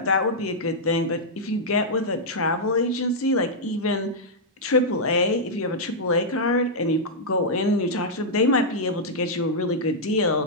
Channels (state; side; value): normal; both; correlation -0.07